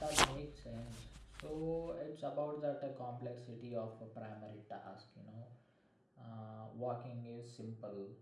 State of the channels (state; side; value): identical; both; correlation 1.00